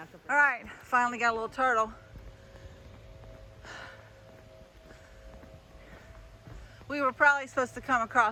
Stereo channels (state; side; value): identical; both; correlation 1.00